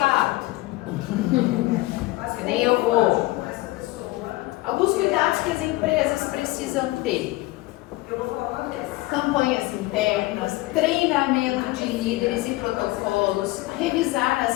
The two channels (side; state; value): right; quieter; 19.8 dB